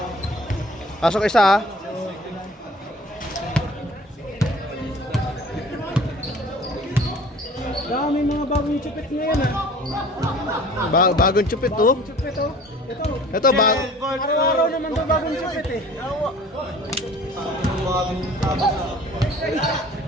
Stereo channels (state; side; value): normal; both; correlation 0.48